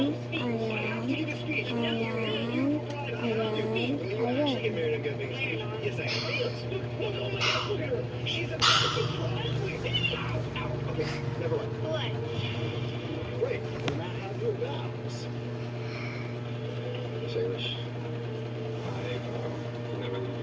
Get married and get a big speech. Yes, I am. She's a okay, never mind. What? Great. We're not have your vows. Salish, I never leave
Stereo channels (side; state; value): both; identical; correlation 1.00